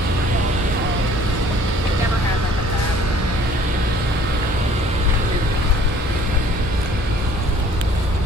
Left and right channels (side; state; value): both; normal; correlation 0.55